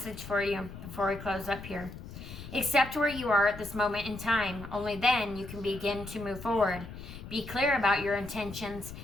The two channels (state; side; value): noise; left; rumble, 12 dB below the sound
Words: for you before we close up here. Accept where you are at this moment in time. Only then you can begin to move forward. Be clear about your intentions.